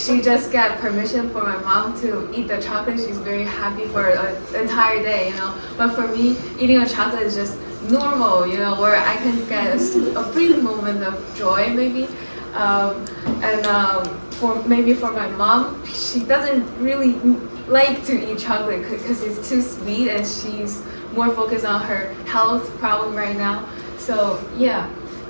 just got permission for my mom to eat the chocolate. She's very happy for an entire day, you know. But for me, eating a chocolate is just normal, you know, where I can get a brief moment of joy, maybe. Um, and for my mom, she doesn't really like to eat chocolate because it's too sweet, and she's more focused on her health problem right now. So yeah,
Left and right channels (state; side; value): inverted; both; correlation -1.00